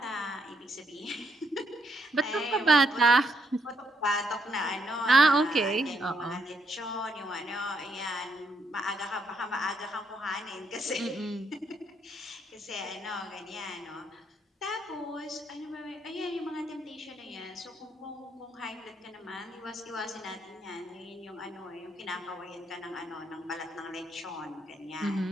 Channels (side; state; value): both; normal; correlation 0.75